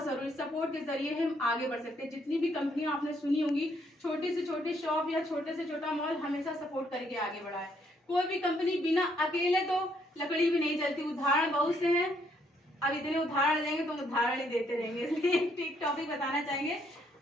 जरूरी। सपोर्ट के जरिए हम आगे बढ़ सकते हैं। जितनी भी कंपनियां आपने सुनी होंगी, छोटी से छोटी शॉप या छोटे से छोटा मॉल, हमेशा सपोर्ट करके आगे बढ़ा है। कोई भी कंपनी बिना अकेले तो लकड़ी भी नहीं जलती। उदाहरण बहुत से हैं, अब इतने उदाहरण देंगे तो उदाहरण ही देते रहेंगे, इसलिए एक टॉपिक बताना चाहेंगे।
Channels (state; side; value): normal; both; correlation 0.70